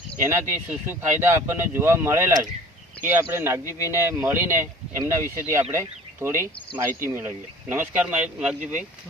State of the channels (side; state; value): both; normal; correlation 0.47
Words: એનાથી શું શું ફાયદા આપણને જોવા મળેલા છે એ આપણે નાગજીભાઈને મળીને એમના વિશેથી આપણે થોડી માહિતી મેળવીએ. નમસ્કાર નાગજીભાઈ.